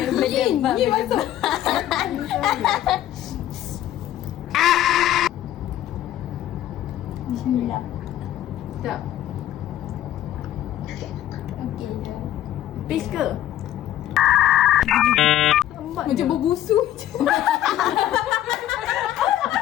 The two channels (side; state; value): right; quieter; 12.7 dB